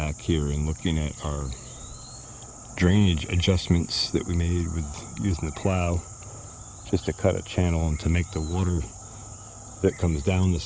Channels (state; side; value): identical; both; correlation 1.00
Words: here and looking at our drainage adjustments that we made with using the plow, just to cut a channel and to make the water that comes down the